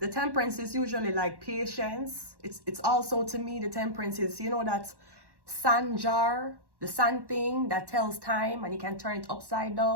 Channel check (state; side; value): late; left; 1.1 ms